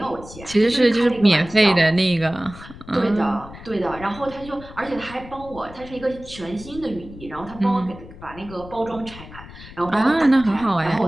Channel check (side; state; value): left; noise; rumble, 17 dB below the sound